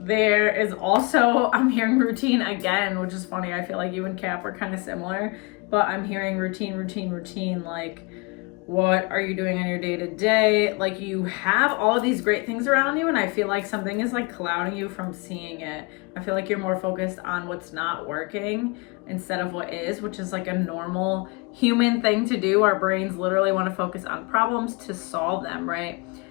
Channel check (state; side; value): quieter; right; 28.6 dB